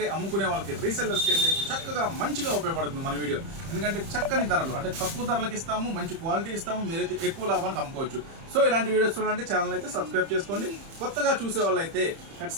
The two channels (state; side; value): late; left; 30 ms